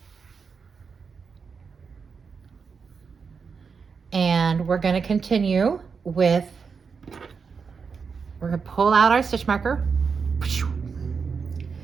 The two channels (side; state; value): left; quieter; 5.6 dB